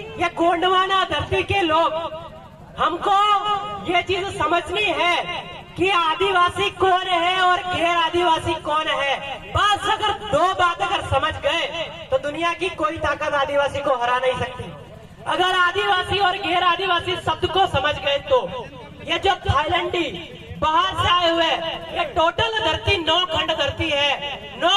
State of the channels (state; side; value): identical; both; correlation 1.00